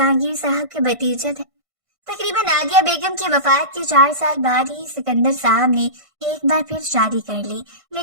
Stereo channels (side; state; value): left; late; 1.5 ms